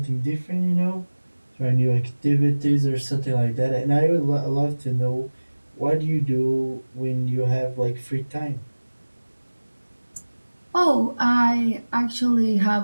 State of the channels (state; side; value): inverted; both; correlation -1.00